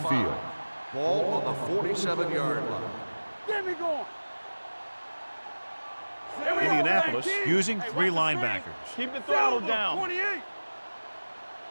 5. Ball on the 47-yard line. Get me going. Indianapolis using 3 linebackers. Keep the throttle Silver, down. 28!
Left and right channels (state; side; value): inverted; both; correlation -1.00